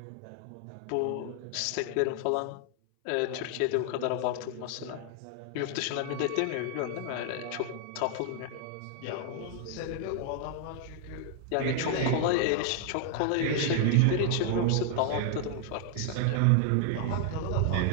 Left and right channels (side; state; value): both; different; correlation 0.00